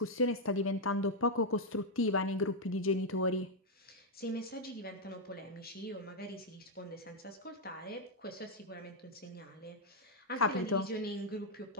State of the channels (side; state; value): both; normal; correlation -0.01